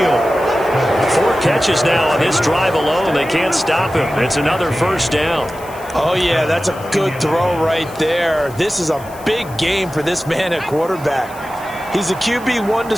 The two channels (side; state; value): left; noise; hiss, 21 dB below the sound